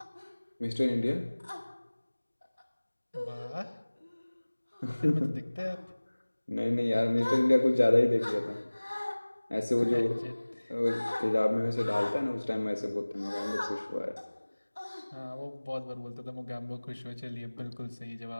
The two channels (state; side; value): inverted; both; correlation -1.00